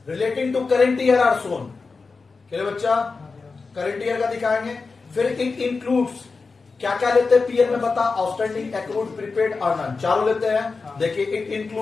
relating to current year are shown. क्या बच्चा? करेंट ईयर का दिखाएंगे। फिर इट इंक्लूड्स क्या क्या लेते हैं पीएल में बता? आउटस्टैंडिंग, एक्रूड, प्रीपेड और नन, चारों लेते हैं। देखिए it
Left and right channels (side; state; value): right; quieter; 4.4 dB